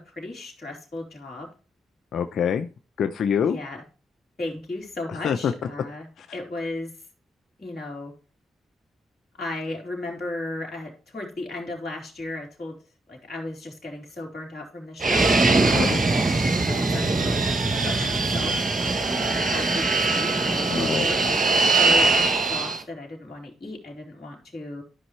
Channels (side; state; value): both; normal; correlation 0.73